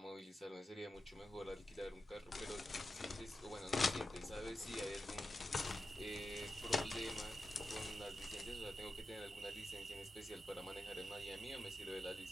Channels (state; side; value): normal; both; correlation 0.91